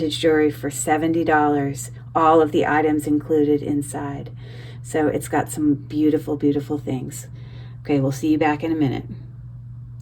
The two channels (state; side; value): identical; both; correlation 1.00